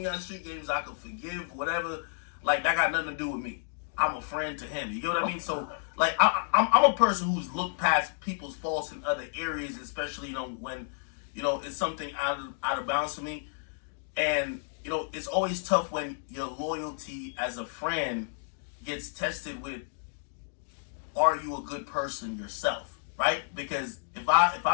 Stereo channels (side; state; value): right; silent; digital silence